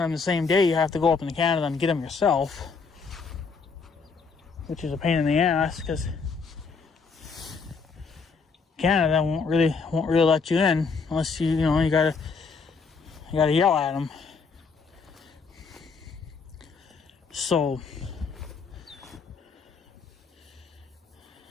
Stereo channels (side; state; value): right; quieter; 5.0 dB